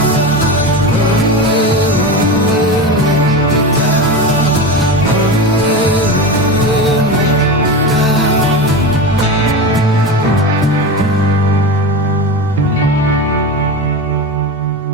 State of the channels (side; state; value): both; normal; correlation 0.23